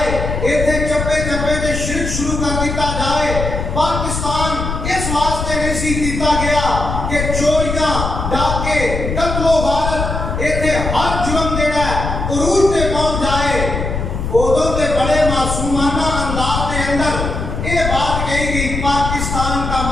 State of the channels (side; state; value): left; noise; rumble, 3 dB below the sound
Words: ایتھے چپے چپے دے شرک شروع کر دیتا جائے. پاکستان اس واسطے نہیں سی کیتا گیا کہ چوریاں ڈاکے قتل و غارت ایتھے ہر جرم جڑا ہے عروج تے پہنچ جائے. ادوں تے بڑے معصومانہ انداز کے اندر یہ بات کہی گئی پاکستان کا